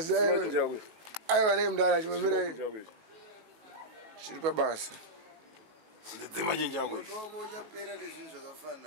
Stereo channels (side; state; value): left; late; 19 ms